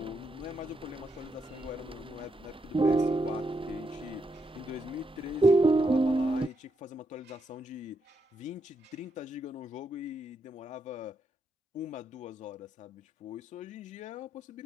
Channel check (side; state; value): both; normal; correlation 0.80